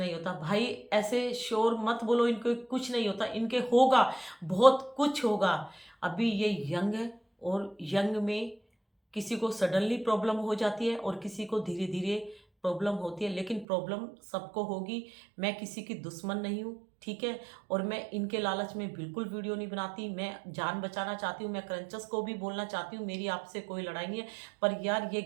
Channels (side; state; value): left; drops out; at 13.7 s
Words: होता। भाई ऐसे शोर मत बोलो, इनके कुछ नहीं होता, इनके होगा, बहुत कुछ होगा। अभी ये यंग है और यंग में किसी को सडनली प्रॉब्लम हो जाती है और किसी को धीरे धीरे प्रॉब्लम होती है, लेकिन प्रॉब्लम सबको होगी। मैं किसी की दुश्मन नहीं हूँ, ठीक है, और मैं इनके लालच में बिल्कुल वीडियो नहीं बनाती। मैं जान बचाना चाहती हूँ, मैं क्रंचर्स को भी बोलना चाहती हूँ, मेरी आपसे कोई लड़ाई नहीं है, पर यार ये